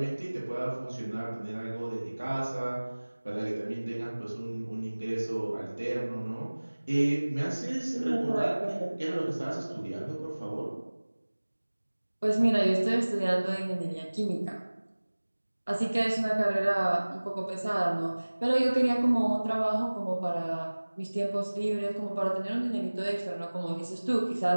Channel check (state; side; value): inverted; both; correlation -1.00